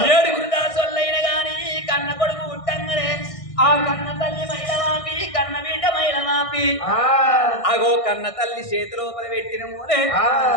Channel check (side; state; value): right; late; 1.6 ms